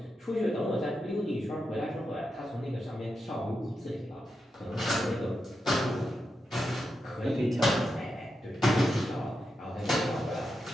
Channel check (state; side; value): normal; both; correlation 0.87